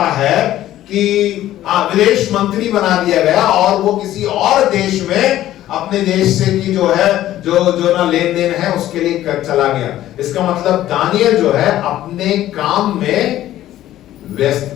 है कि विदेश मंत्री बना दिया गया और वो किसी और देश में अपने देश से की जो है जो ना लेन देन है उसके लिए चला गया। इसका मतलब दानियल जो है अपने काम में व्यस्त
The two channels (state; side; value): quieter; right; 13.5 dB